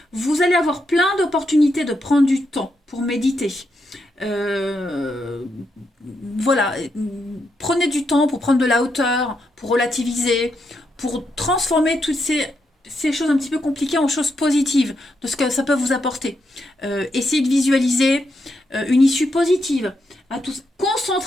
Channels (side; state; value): both; normal; correlation 0.82